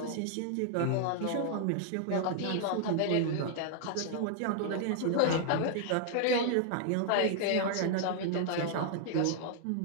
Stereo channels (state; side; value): different; both; correlation -0.01